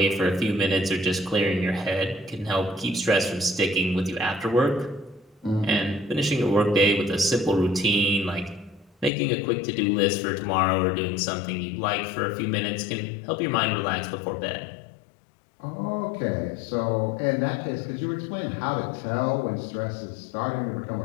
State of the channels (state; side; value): drops out; right; at 9.1 s